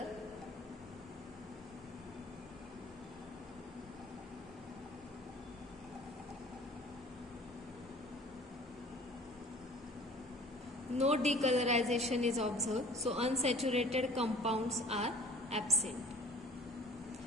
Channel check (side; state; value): both; normal; correlation 0.46